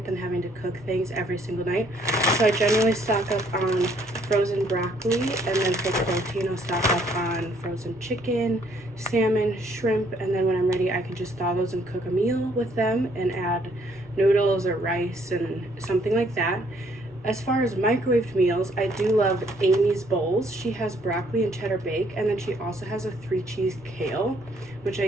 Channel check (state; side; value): normal; both; correlation 0.66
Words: than having to cook things every single night. So I generally stock up on frozen broccoli, and then for protein I'll stock up on frozen chicken, salmon, shrimp, and then when I'm ready I can just thaw those and cook a meal with them and add noodles or rice and something like that. As far as microwaved meals, I do love Amy's Bowls. She has broccoli and cheddar bake, and then she also has a 3-cheese kale, which